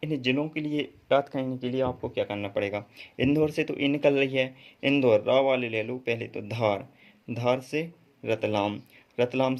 इन ज़िलों के लिए याद करने के लिए आपको क्या करना पड़ेगा, इंदौर से तो ये निकल रही है, इंदौर रा वाले ले लो पहले तो। धार, धार से रतलाम, रतलाम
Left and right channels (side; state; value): both; identical; correlation 1.00